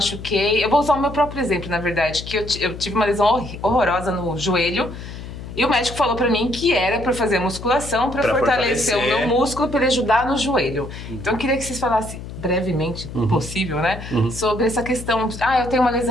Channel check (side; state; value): left; noise; hum, 11 dB below the sound